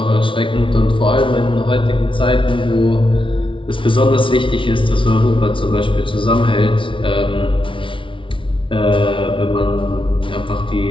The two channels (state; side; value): late; right; 0.25 ms